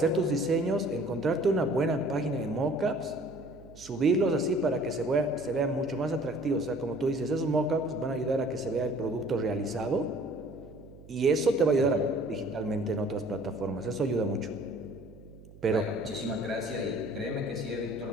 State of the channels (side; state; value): right; noise; hum, 20 dB below the sound